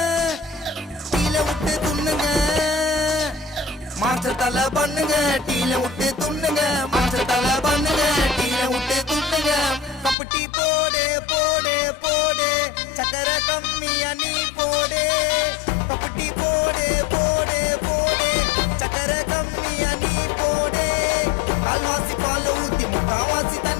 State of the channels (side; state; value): right; drops out; at 10.2 s